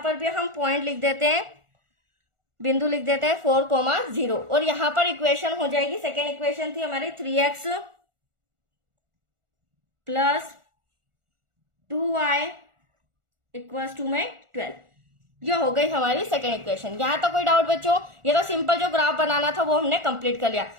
पर भी हम पॉइंट लिख देते हैं, बिंदु लिख देते हैं 4,0 और यहाँ पर इक्वेशन हो जाएगी, सेकेंड इक्वेशन थी हमारी 3x + 2y = 12। ये हो गई हमारी सेकेंड इक्वेशन। यहाँ तक कोई डाउट बच्चों? ये तो सिंपल जो ग्राफ बनाना था वो हमने कंप्लीट कर लिया।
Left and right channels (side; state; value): left; late; 1.4 ms